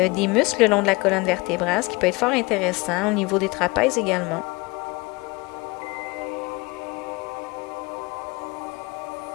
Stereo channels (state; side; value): quieter; right; 25.0 dB